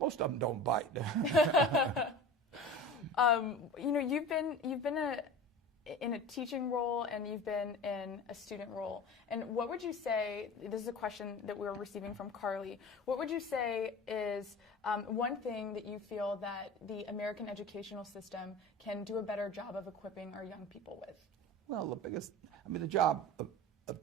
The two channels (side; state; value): both; normal; correlation 0.35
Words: of them don't bite. You know, you've been in a teaching role, and you've been in a student role. And what would you say, this is a question that we're receiving from Carly, what would you say is one thing that you feel that the American educational system can do a better job of equipping our young people with? Well, the job of